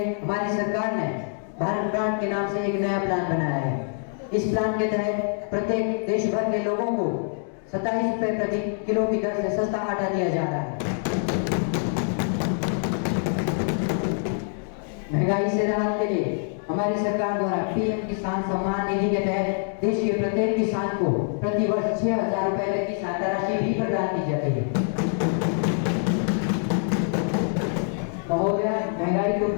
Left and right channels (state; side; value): silent; right; 62 dB below the other